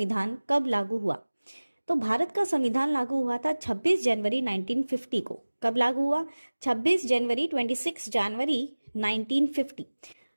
कब लागू हुआ? तो भारत का संविधान लागू हुआ था 26 जनवरी 1950 को। कब लागू हुआ? 26 जनवरी 26 जनवरी 1950।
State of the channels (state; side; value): inverted; both; correlation -1.00